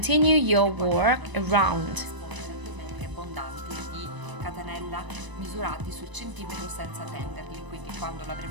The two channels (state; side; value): late; left; 1.0 ms